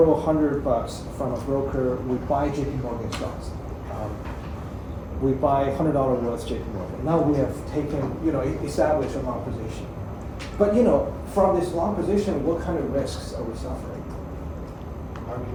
$100 from a broker. We buy JP Morgan stocks. We buy $100 worth JP Morgan. Now we have taken, established a long position. But from this long position, what kind of risks are we suffering?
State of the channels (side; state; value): both; identical; correlation 1.00